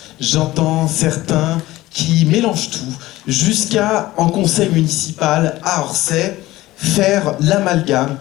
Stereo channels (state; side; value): quieter; right; 17.4 dB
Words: j'entends certains qui mélangent tout, jusqu'à, en conseil municipal à Orsay, faire l'amalgame